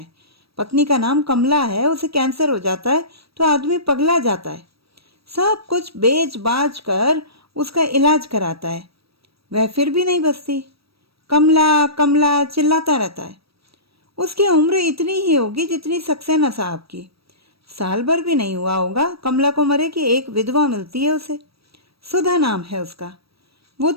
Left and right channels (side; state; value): left; late; 0.76 ms